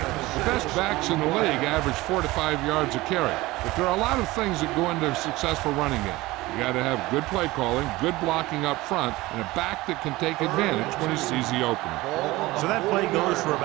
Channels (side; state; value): left; quieter; 19.6 dB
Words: The best backs in the league average 4 to 5 yards a carry. But there are a lot of things that go into a successful running game. You got to have good play calling, good blocking up front, and a back that can take advantage when he sees the opening. So that play goes for